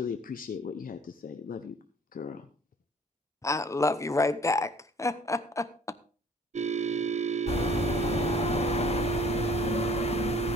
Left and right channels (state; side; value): normal; both; correlation 0.54